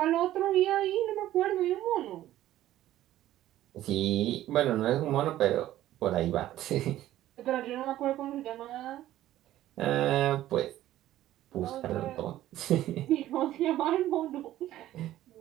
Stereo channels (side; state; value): left; quieter; 13.8 dB